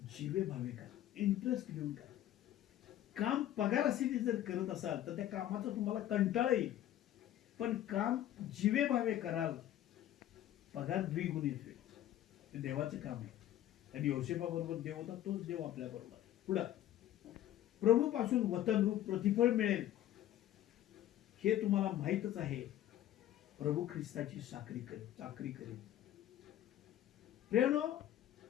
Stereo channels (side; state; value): right; quieter; 12.5 dB